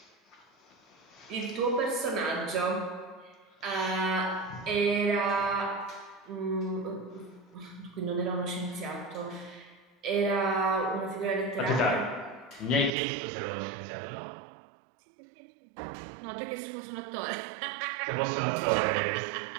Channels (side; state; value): left; drops out; at 12.9 s